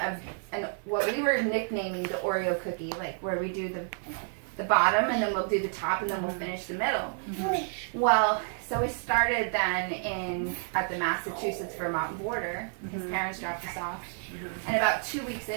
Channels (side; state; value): left; silent; 58 dB below the other